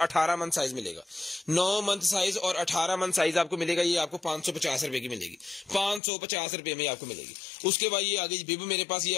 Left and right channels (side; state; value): right; drops out; at 6.0 s